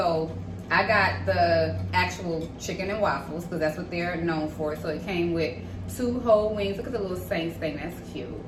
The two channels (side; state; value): both; identical; correlation 1.00